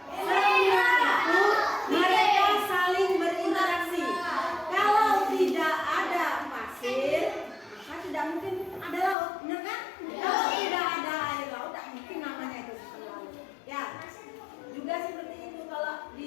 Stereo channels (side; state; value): right; drops out; at 9.2 s